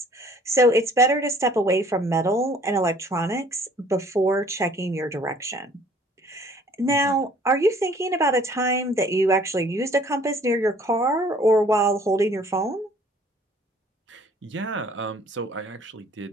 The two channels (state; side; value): normal; both; correlation 0.56